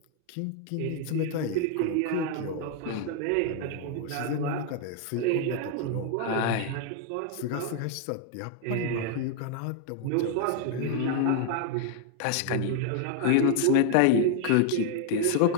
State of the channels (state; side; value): different; both; correlation 0.00